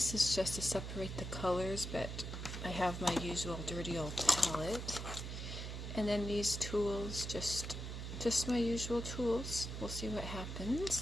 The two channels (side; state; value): right; noise; hum, 6 dB below the sound